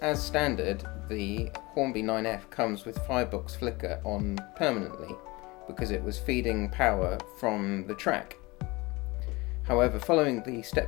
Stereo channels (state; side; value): quieter; right; 23.2 dB